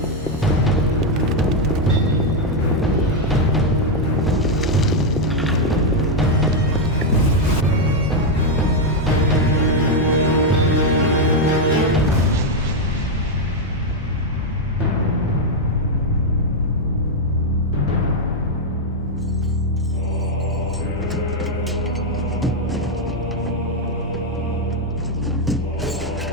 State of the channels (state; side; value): normal; both; correlation 0.02